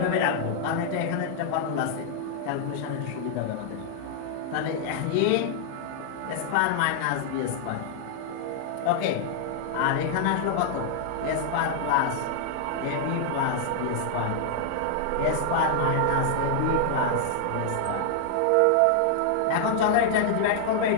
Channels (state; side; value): different; both; correlation -0.01